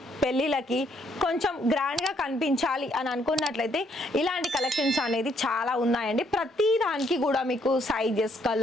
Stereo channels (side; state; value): both; normal; correlation 0.70